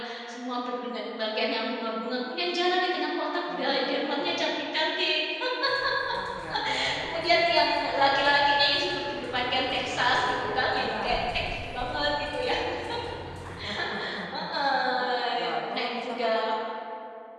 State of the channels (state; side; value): identical; both; correlation 1.00